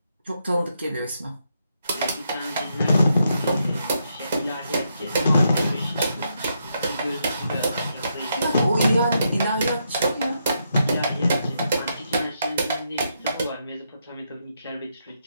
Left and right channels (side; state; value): both; inverted; correlation -0.80